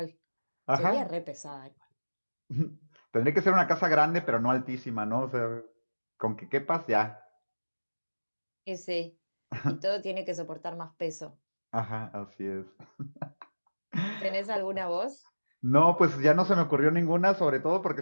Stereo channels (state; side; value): inverted; both; correlation -1.00